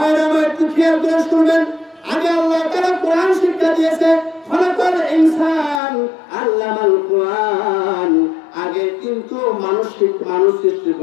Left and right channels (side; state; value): right; drops out; at 5.8 s